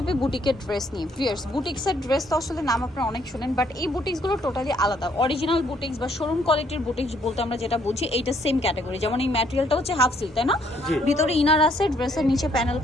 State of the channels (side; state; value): both; normal; correlation 0.67